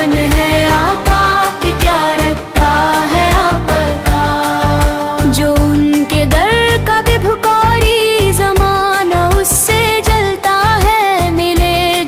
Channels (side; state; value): both; identical; correlation 1.00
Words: ہے آقا کی، کیا رکھتا ہے آپ کا۔ جو ان کے در کا بھی بھکاری زمانہ اس سے جلتا ہے، ملے